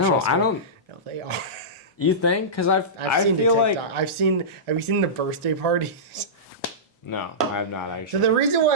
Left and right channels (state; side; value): normal; both; correlation -0.17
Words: I don't. No, they are. You think? Because I seen feel like Have you seen the birthday parties? No, I have not actually. So the reason